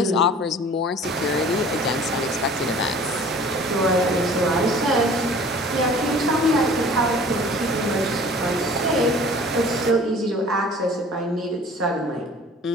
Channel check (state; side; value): normal; both; correlation 0.47